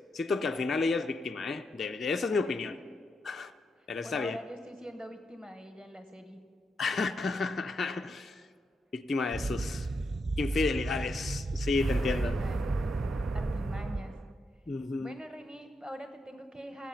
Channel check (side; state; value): both; normal; correlation 0.82